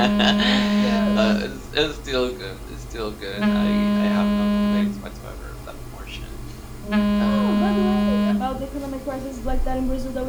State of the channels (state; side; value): identical; both; correlation 1.00